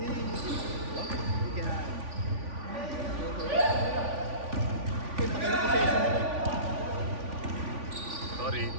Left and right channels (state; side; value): late; left; 3.5 ms